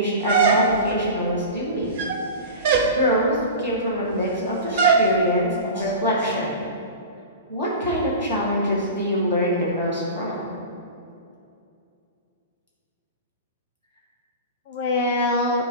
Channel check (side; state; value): both; inverted; correlation -0.31